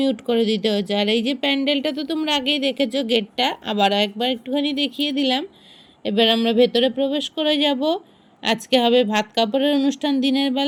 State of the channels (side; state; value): both; identical; correlation 1.00